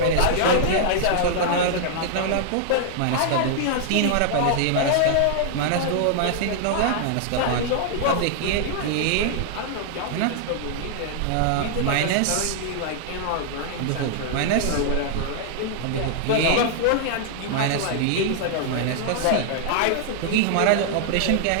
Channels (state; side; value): different; both; correlation -0.01